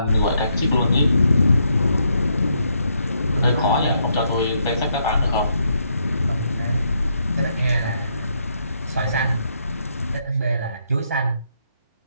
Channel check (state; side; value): inverted; both; correlation -0.76